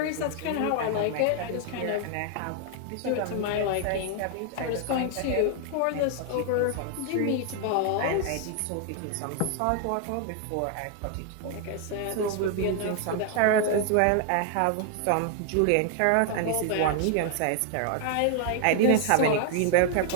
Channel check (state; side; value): different; both; correlation 0.00